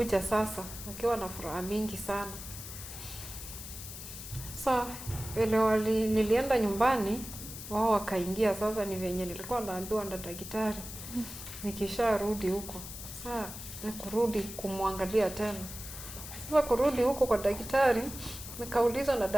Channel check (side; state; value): left; noise; hiss, 11 dB below the sound